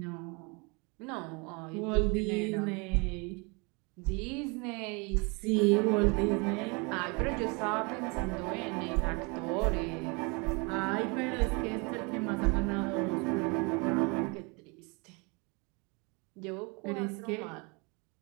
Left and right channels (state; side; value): quieter; left; 30.3 dB